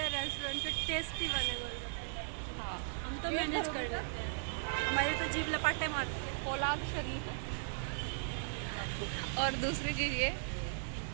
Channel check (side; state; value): left; silent; 53 dB below the other